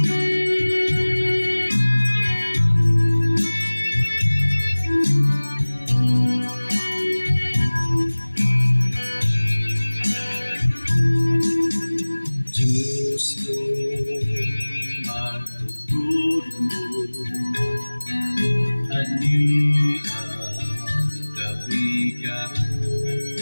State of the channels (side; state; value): both; inverted; correlation -1.00